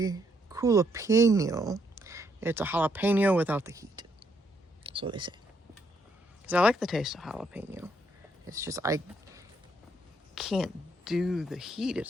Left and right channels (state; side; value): normal; both; correlation 0.73